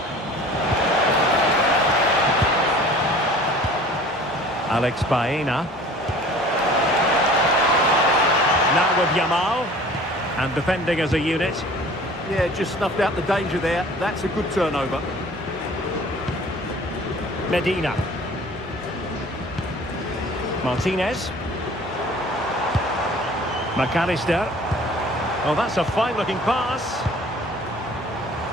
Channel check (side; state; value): both; normal; correlation 0.47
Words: Alex Baena. Now with Yamal. And defending as a unit. Yeah, just snuffed out the danger there. That's a good turnover. Medina. Martinez. McAllister. Oh, that's a fine-looking pass.